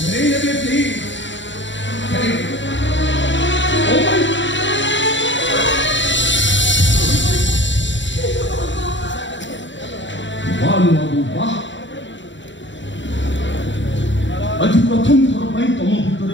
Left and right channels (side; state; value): right; late; 0.54 ms